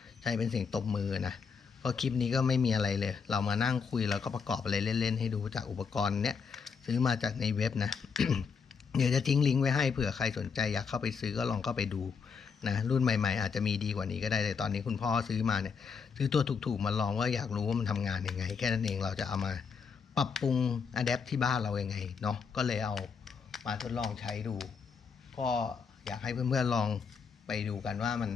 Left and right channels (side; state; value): right; quieter; 5.9 dB